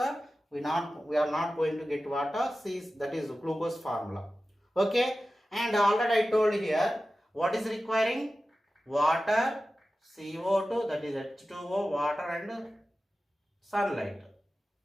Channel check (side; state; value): both; normal; correlation 0.94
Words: we are not going to get what? C, that is glucose formula. Okay, and already I told here what is requiring? Water, CO2, that is H2O, water and sunlight.